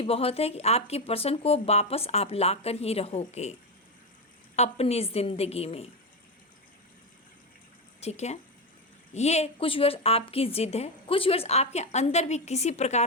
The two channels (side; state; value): both; normal; correlation 0.11